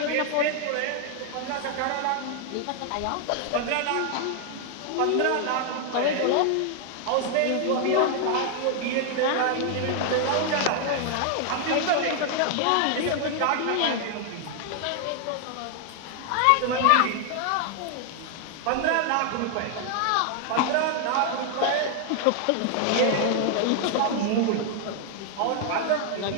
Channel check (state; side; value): different; both; correlation 0.00